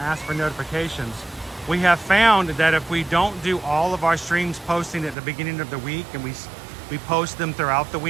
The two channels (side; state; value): left; drops out; at 5.2 s